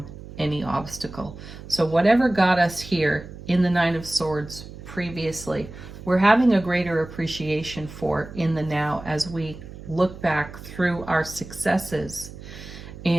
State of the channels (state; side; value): noise; right; hum, 14 dB below the sound